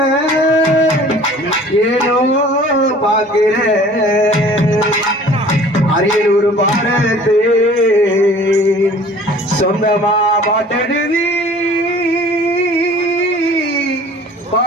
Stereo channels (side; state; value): both; normal; correlation 0.49